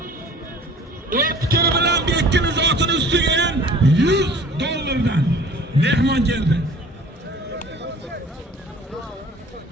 O'tkir bilan Bekkin zotining ustiga ham $100 mehmon keldi.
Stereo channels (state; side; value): normal; both; correlation 0.48